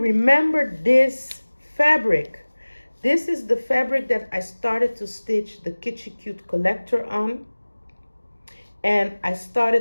this fabric? This is the fabric that I started to stitch the Kitschy Cute collector on. And I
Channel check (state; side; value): inverted; both; correlation -1.00